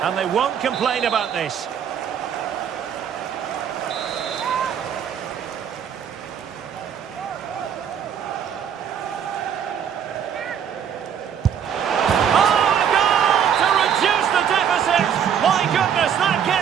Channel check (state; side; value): quieter; left; 8.4 dB